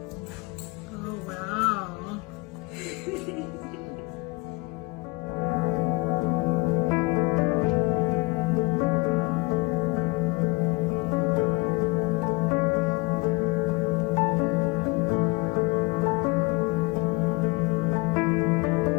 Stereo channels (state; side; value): quieter; right; 25.4 dB